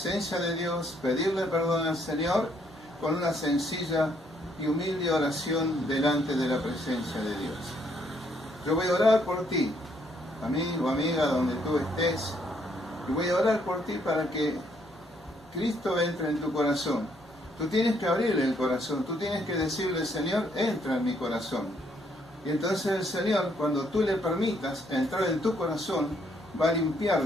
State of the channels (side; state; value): both; normal; correlation 0.70